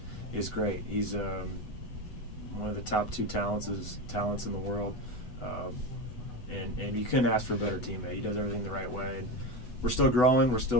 is great. He's one of the top 2 talents in the world. And you couldn't ask for a better teammate. He does everything the right way. And we're still growing, we're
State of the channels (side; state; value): right; late; 8.1 ms